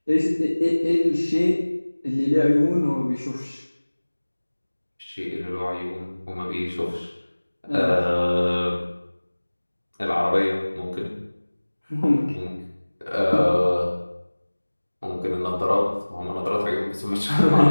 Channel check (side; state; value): both; inverted; correlation -1.00